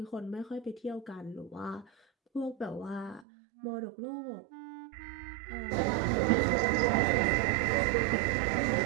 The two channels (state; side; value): drops out; left; at 3.2 s